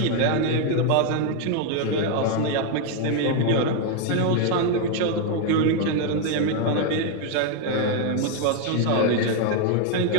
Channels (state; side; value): different; both; correlation 0.01